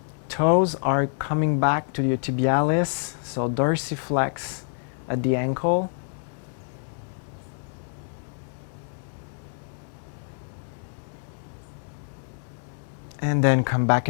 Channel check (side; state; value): right; silent; 59 dB below the other